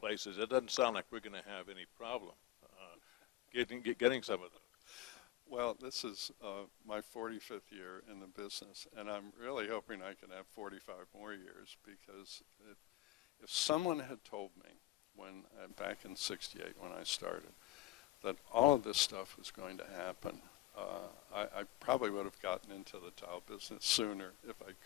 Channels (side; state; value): right; quieter; 15.6 dB